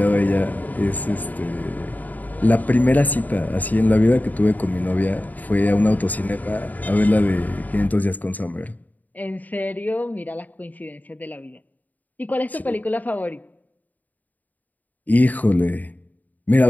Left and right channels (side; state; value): right; late; 0.080 ms